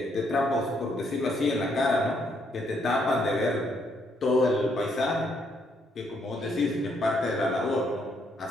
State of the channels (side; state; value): both; normal; correlation 0.72